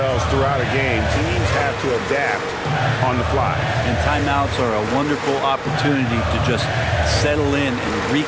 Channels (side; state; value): both; identical; correlation 1.00